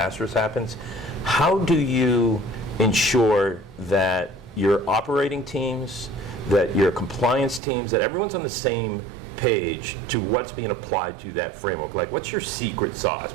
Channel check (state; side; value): drops out; left; at 7.6 s